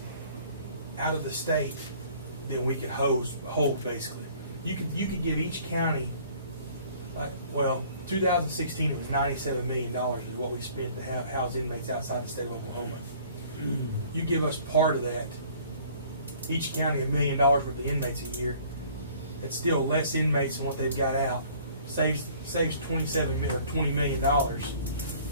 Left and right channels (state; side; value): inverted; both; correlation -0.54